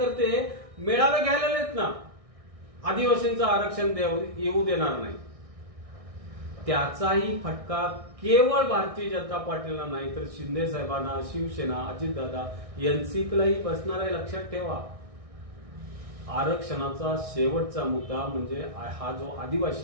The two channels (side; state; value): left; late; 1.6 ms